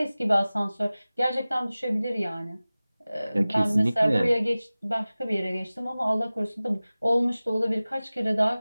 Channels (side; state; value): both; inverted; correlation -0.98